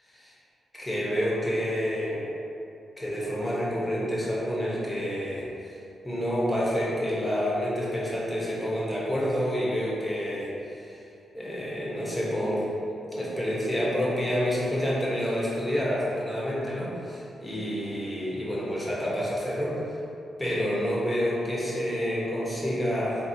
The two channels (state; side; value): normal; both; correlation 0.86